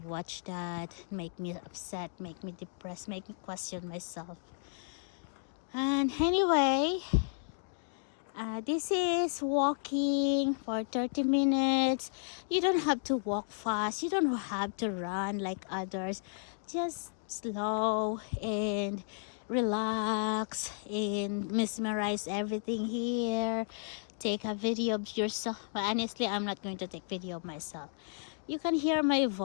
watch that, make me upset, make me depressed, make me question myself. And anyway, this is walking for 30 minutes. You don't have to walk fast, you don't have to run like others. Just slow and relax and mesmerize everything here. Take a video of yourself. But honestly, I'm not going to take video of myself. You can hear my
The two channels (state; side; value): silent; right; digital silence